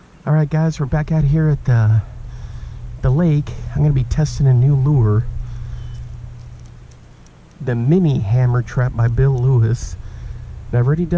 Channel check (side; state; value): both; identical; correlation 1.00